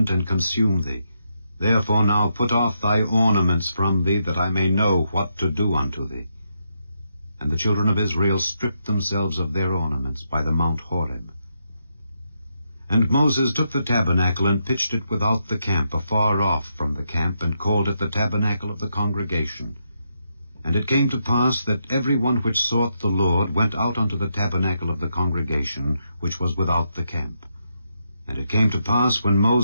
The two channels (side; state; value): both; inverted; correlation -0.81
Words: and consume thee. Therefore now put off thy ornaments from thee, that I may know what to do unto thee. And the children of Israel stripped themselves of their ornaments by the Mount Horeb. And Moses took the tabernacle, and pitched it without the camp, afar off from the camp, and called it the tabernacle of the congregation. And it came to pass that every one which sought the Lord went out unto the tabernacle of the congregation, which was without the camp. And it came to pass, when